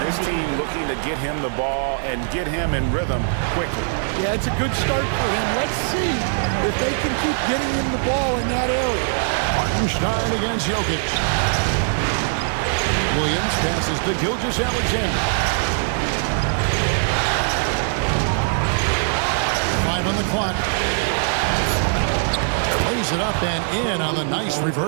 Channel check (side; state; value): left; silent; digital silence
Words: this team looking to get him the ball and get him in rhythm quickly. Yeah, it's a good start for him. Let's see if they can keep getting him the ball in that area. Hartenstein against Jokic. Williams passes to Gilgeous-Alexander. 5 on the clock. Lays it up and in on the nice